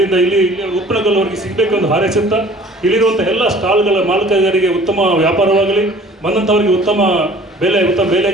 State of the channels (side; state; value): both; normal; correlation 0.50